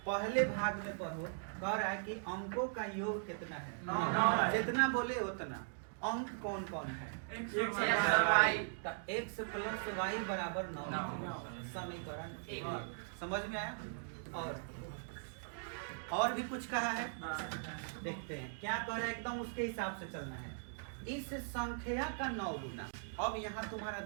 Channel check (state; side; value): silent; left; digital silence